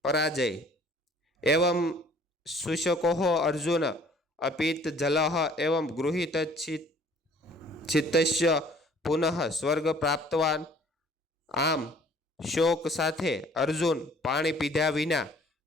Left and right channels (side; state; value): both; normal; correlation 0.55